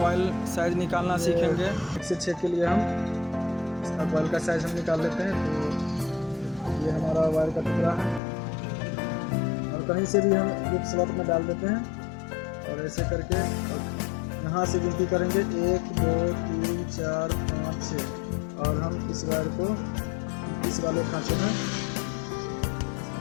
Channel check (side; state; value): right; drops out; at 8.2 s